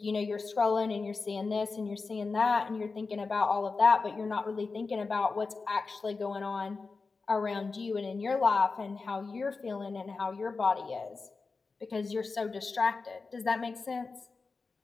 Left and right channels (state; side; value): quieter; right; 4.2 dB